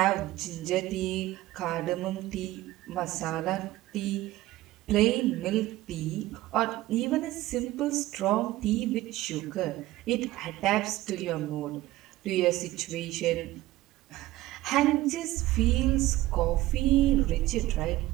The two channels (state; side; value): quieter; left; 16.8 dB